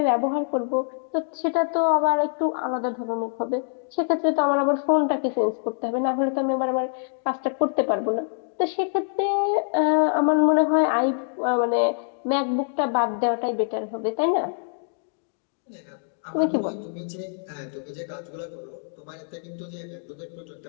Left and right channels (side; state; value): right; silent; digital silence